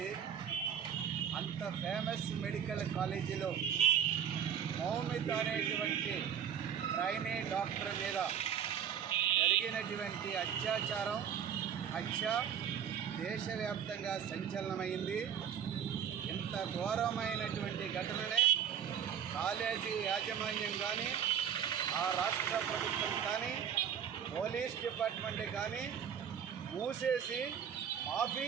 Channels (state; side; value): quieter; left; 8.6 dB